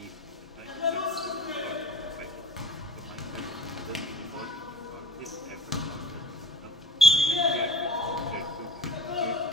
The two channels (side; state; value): both; normal; correlation 0.40